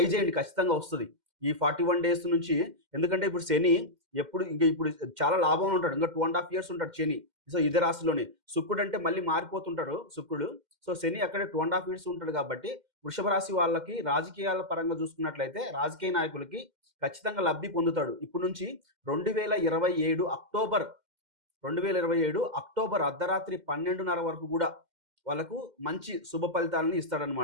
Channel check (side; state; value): left; late; 2.1 ms